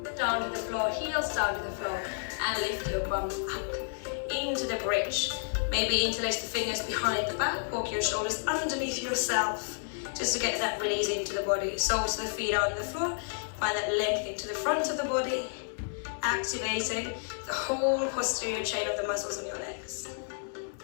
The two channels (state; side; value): silent; right; digital silence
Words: down to the floor, heels down to the floor, and lift your bum up into the bridge. Maybe interlace the fingers behind the back, walk your shoulders underneath yourself, just to get that release into the body. Soles of the feet on the floor, find that length into the front of the body, activating the whole posterior chain of the muscles on your legs.